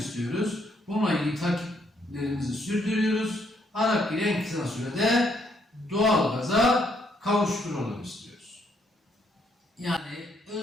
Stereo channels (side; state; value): both; normal; correlation 0.72